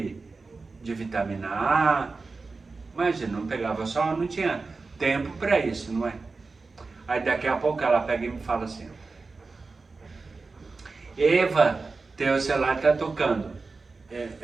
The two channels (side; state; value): left; quieter; 4.0 dB